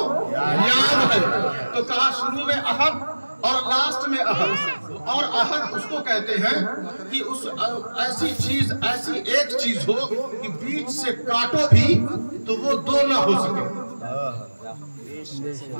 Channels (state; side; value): inverted; both; correlation -1.00